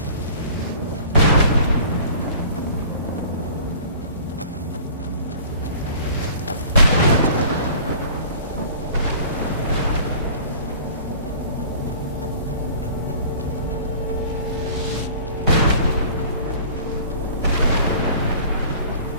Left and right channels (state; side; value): inverted; both; correlation -0.46